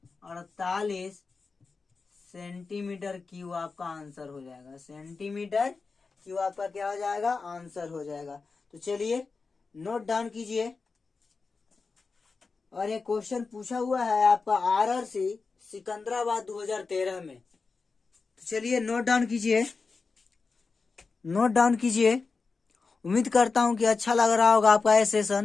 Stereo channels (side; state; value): right; quieter; 4.4 dB